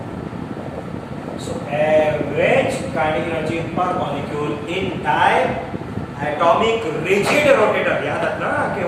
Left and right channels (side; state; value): both; identical; correlation 1.00